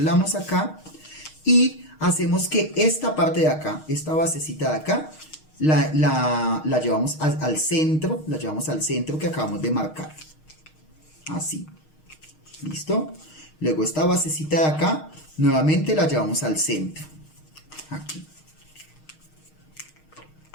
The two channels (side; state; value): right; late; 6.4 ms